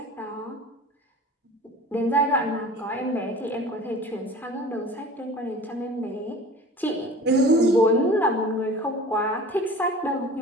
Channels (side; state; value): both; normal; correlation 0.41